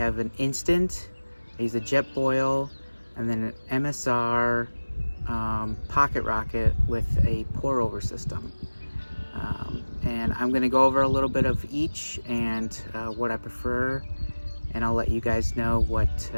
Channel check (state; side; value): inverted; both; correlation -1.00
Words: an instant, I use a jet boil, and then an MSR pocket rocket with a pour over system. And I'm going to go over a little bit of each and what I prefer, and I'll let you guys know what